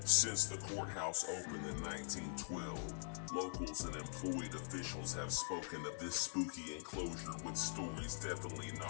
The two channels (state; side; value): silent; right; digital silence